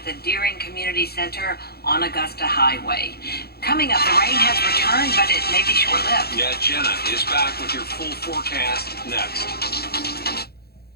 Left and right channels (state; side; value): late; right; 0.46 ms